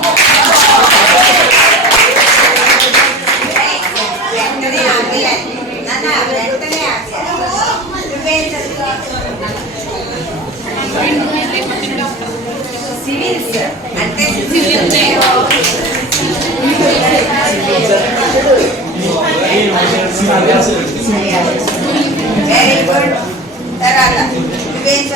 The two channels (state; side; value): normal; both; correlation 0.32